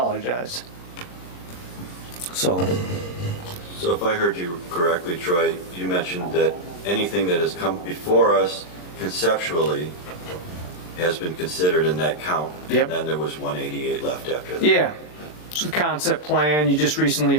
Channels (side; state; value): right; late; 40 ms